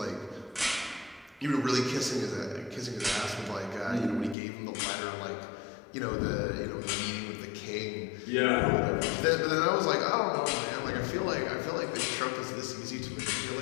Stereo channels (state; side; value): drops out; right; at 4.4 s